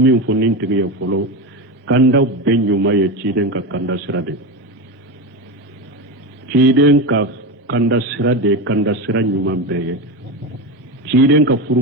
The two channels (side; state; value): both; normal; correlation 0.19